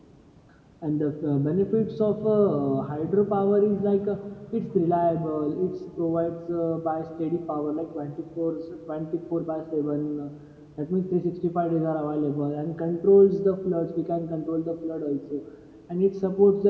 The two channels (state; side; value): identical; both; correlation 1.00